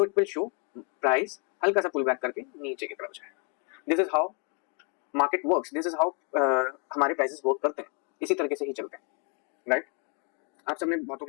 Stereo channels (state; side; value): quieter; right; 37.8 dB